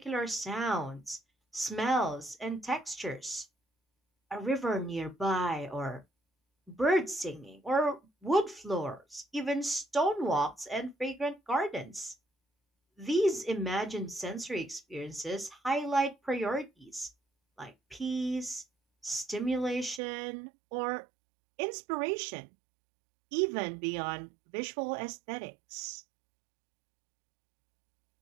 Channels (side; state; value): left; drops out; at 20.0 s